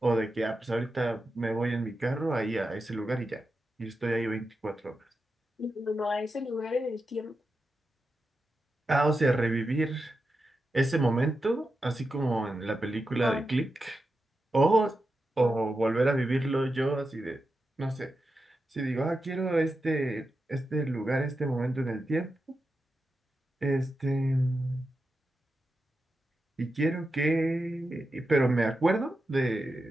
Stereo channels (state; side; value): normal; both; correlation 0.89